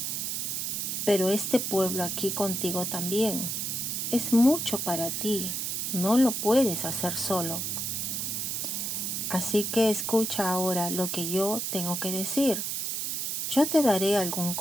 pero este pueblo aquí contigo también. Es mucho para ti, no lo puedes hacer solo. Así que escucha ahora lo que yo tengo que decir. Yo te daré algún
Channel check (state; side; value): noise; right; hiss, 1 dB below the sound